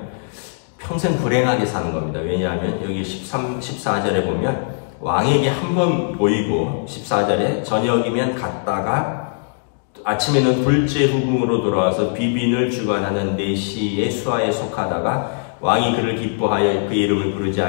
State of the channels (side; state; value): right; silent; digital silence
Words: 평생 불행하게 사는 겁니다. 왜냐하면 여기 14절에 보면 왕에게 한 번 보이고 14절에 저녁이면 갔다가 아침에는 둘째 후궁으로 돌아와서 비빈을 주관하는 내시의 수하에 속하다가 왕이 그를 기뻐하여 그 이름을 부르지